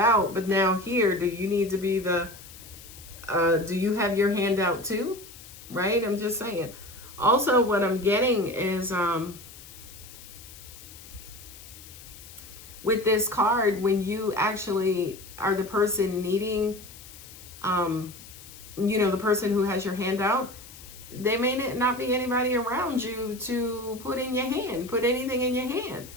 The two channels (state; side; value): noise; left; hiss, 17 dB below the sound